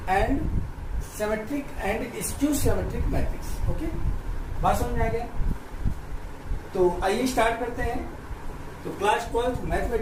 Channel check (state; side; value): identical; both; correlation 1.00